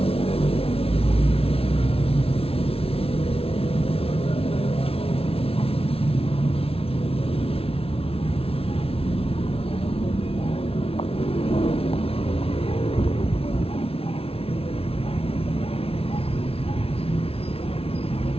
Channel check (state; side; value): late; right; 0.27 ms